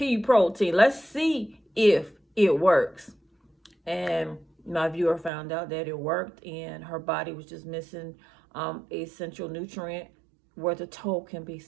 protein. Let's see if it works. And my viewer found out that it worked, and her body was just missing essential nutrient where the toe can be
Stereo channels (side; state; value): left; drops out; at 5.3 s